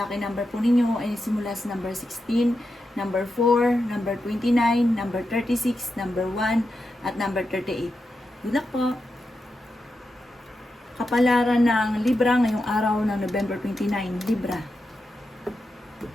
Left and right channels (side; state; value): both; normal; correlation 0.88